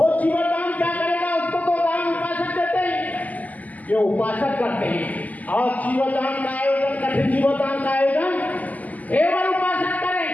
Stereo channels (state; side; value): late; right; 0.078 ms